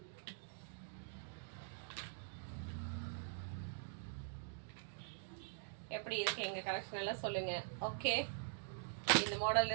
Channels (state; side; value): silent; left; digital silence